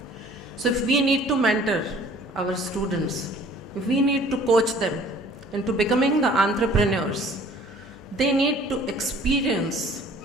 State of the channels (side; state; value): both; normal; correlation 0.52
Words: So if we need to mentor our students, if we need to coach them into becoming the entrepreneurs, they need to experience